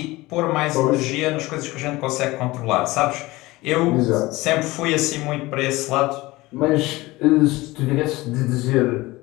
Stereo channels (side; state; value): right; quieter; 20.2 dB